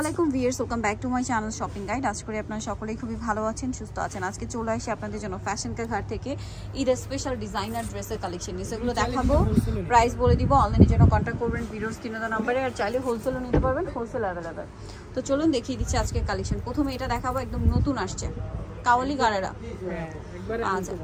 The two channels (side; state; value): both; identical; correlation 1.00